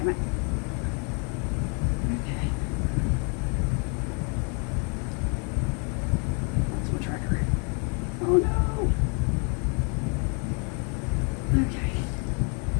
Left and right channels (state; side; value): quieter; right; 36.8 dB